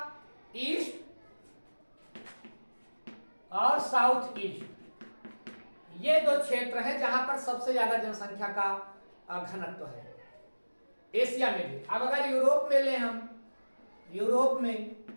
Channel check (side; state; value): both; inverted; correlation -1.00